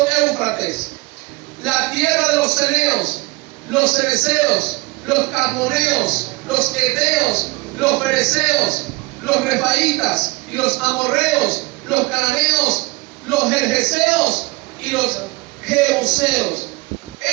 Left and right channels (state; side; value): quieter; left; 23.6 dB